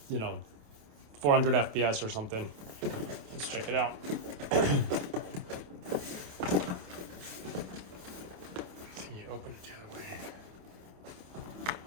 400 FPS or something. Let's check it out. Open it the other way.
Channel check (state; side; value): late; left; 28 ms